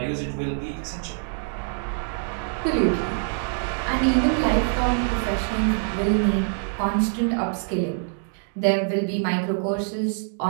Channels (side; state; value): left; silent; 62 dB below the other